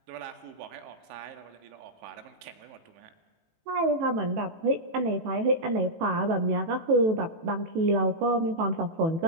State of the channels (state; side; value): late; left; 19 ms